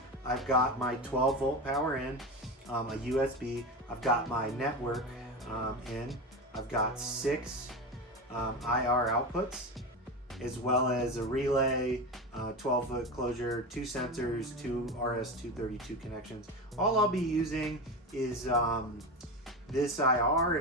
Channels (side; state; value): both; normal; correlation 0.22